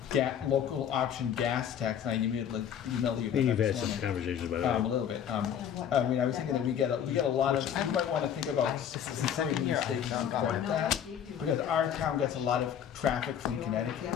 local option gas tax, and I immediately emailed you about You've that had this some morning. conversations about A it. little bit. I mean, I was thinking that we get a lot of, you might want to think about considering the state support that, because our town gets a lot of traffic from Connecticut,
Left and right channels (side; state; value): right; quieter; 9.0 dB